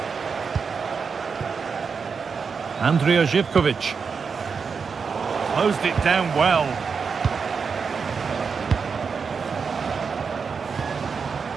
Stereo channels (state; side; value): quieter; left; 5.6 dB